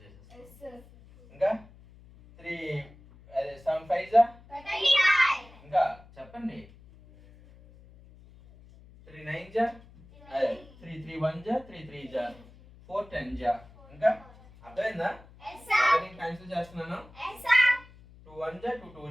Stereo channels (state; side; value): noise; left; hum, 23 dB below the sound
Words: చేసేస్తాం. ఇంకా 3 7 5 జా 35. ఇంకా చెప్పండి 3 9 జా 3 3 1 జా 3 3 జా 4 10 జా. ఇంకా అర్థమైందా? నేను క్యాన్సిల్ చేస్తున్నాను. 2 1 జా 2 2